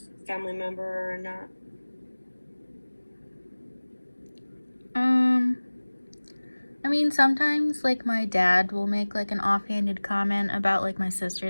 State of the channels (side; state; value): both; inverted; correlation -1.00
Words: family member or not. Um, I mean, sometimes, like, my dad will make, like, an offhanded comment about, like, my